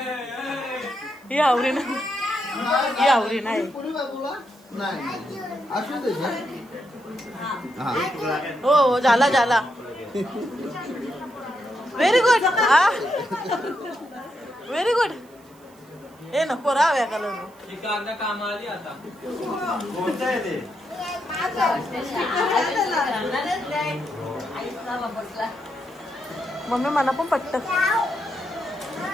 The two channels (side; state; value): right; noise; hiss, 29 dB below the sound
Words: ही हावरी ना ही हावरी नाही नाही असू दे हो हो झाला झाला व्हेरी गुड व्हेरी गुड ए नको राव्या का कांदा कामाला आली आता कोणतं आहे ते? मम्मी मला पण पटत